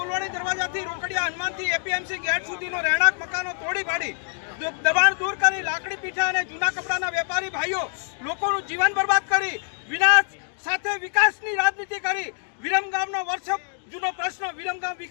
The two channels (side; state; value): right; silent; 58 dB below the other